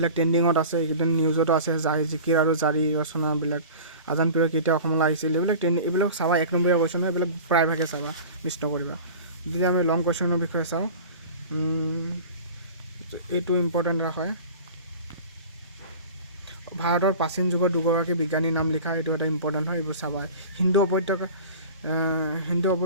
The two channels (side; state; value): both; inverted; correlation -0.38